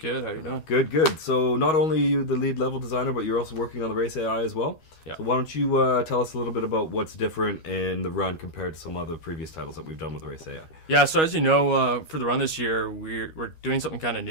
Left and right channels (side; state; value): right; late; 13 ms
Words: how you doing? Good. So not only are you the lead level designer, but you're also working on the race AI as well. Yeah. So why don't you tell us a little bit about what's different in the run compared to some other previous titles that we've done with the race AI? Yeah, so as you know, for the run this year, we're doing something kind of